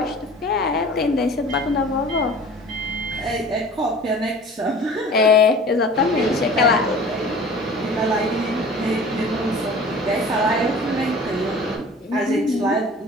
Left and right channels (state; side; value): normal; both; correlation 0.43